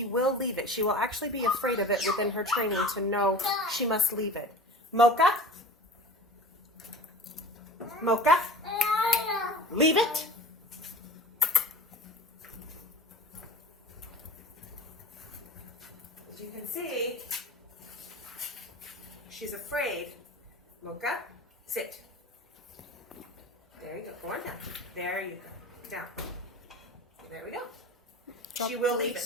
will leave it. She will actually be afraid of it within her training to know she must leave it. Mocha? Mocha? Leave it. As you can see, she's afraid. Mocha, sit. There you go. Go on down. There you go. Down. There we go. Drop She will the leave leash.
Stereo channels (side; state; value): both; normal; correlation 0.38